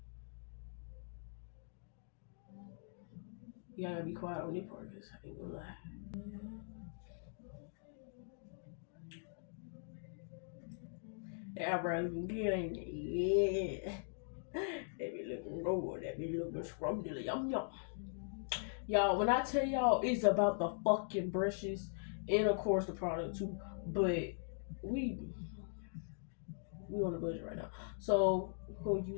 You gotta be quiet on this part, cause I ain't gonna lie. That eyebrow looking good, ain't it? Yeah. That be looking good. That be looking scrumptious. Yum yum. Y'all, when I tell y'all it's about the fucking brushes and of course the product too, but we on a budget right now, so we're gonna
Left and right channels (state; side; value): silent; right; digital silence